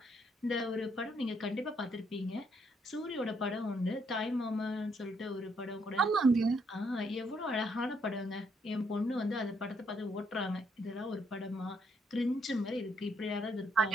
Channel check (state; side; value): normal; both; correlation 0.72